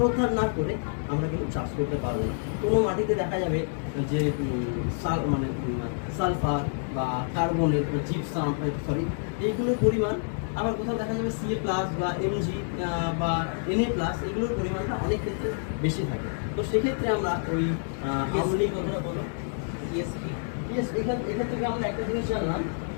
না করে আমরা কিন্তু চাষ করতে পারবো না। কোনো মাটিতে দেখা যাবে যে সালফার বা কার্বনের জিপসাম এইগুলোর পরিমাণ, আবার কোথাও দেখা যাবে সিএ প্লাস বা এমজি বা এনএ প্লাস, এগুলোর পরিমাণটা অনেক ক্ষেত্রে বেশি থাকে। তো সেক্ষেত্রে আমরা ওই আমলি কথাটা বলো ইএসপি। এখান থেকে আমরা একটা জিনিস জানলাম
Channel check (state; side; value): silent; right; digital silence